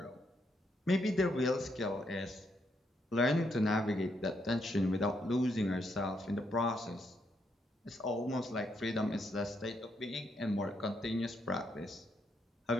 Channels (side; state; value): both; normal; correlation 0.77